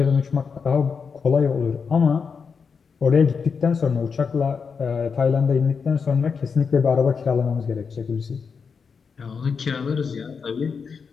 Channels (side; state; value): right; quieter; 5.7 dB